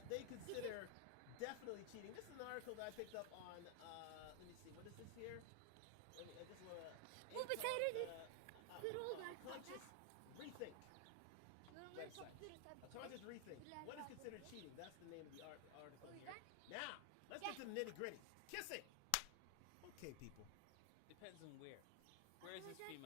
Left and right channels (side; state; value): both; different; correlation 0.00